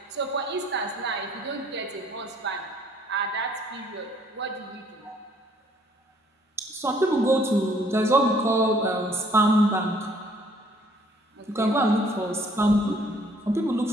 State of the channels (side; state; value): both; normal; correlation 0.61